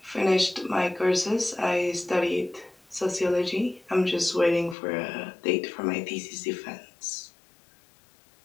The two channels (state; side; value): drops out; right; at 4.8 s